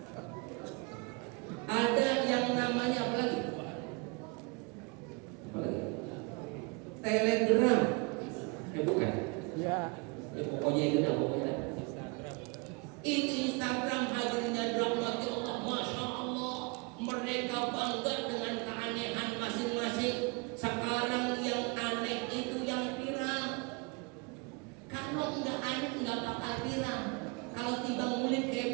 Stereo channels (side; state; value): left; quieter; 30.2 dB